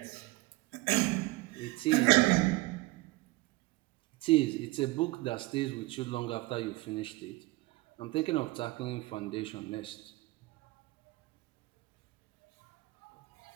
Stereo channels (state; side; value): quieter; left; 21.5 dB